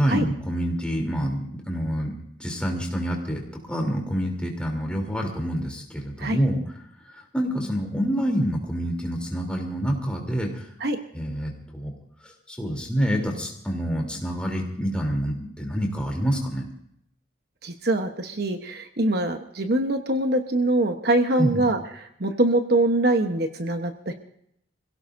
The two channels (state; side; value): normal; both; correlation 0.60